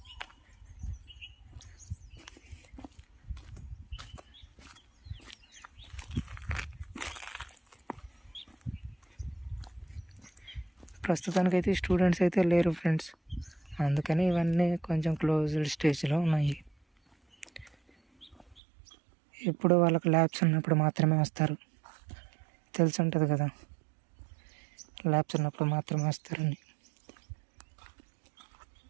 ప్రస్తుతానికైతే స్టూడెంట్స్ అయితే లేరు ఫ్రెండ్స్, అందుకని ఇవన్నీ కొంచెం క్లోజ్డ్ స్టేజ్లో ఉన్నాయి. ఎప్పుడు వాళ్ళకి ల్యాబ్స్ ఉన్నప్పుడు మాత్రమే వస్తారు, తెలిసి ఉంటుంది కదా, ల్యాబ్స్ ఉన్నప్పుడు మాత్రమే వస్తారని.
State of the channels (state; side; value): drops out; left; at 18.6 s